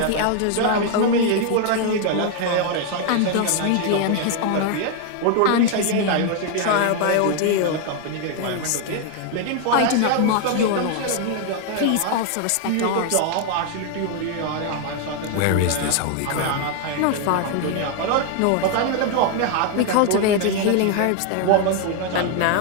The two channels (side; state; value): both; different; correlation 0.01